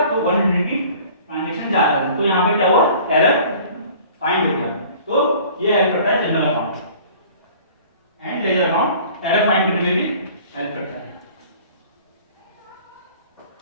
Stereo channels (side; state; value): both; inverted; correlation -0.49